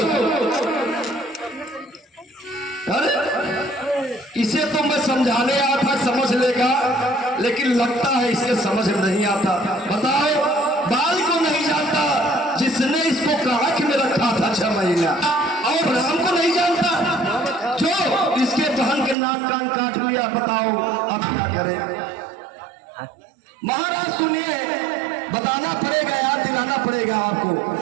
अरे इसे तो को मैं समझाने आया था, समझ लेगा, लेकिन लगता है इसके समझ में नहीं आता। बताओ, बाल को नहीं जानता जिसने इसको काख में रखा था 6 महीना, और राम को नहीं जानता जो इसके बहन के नाक कान काट लिया। बताओ अब क्या करे। महाराज सुनिए, बताना पड़ेगा, याद दिलाना पड़ेगा आपको।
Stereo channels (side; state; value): left; drops out; at 19.2 s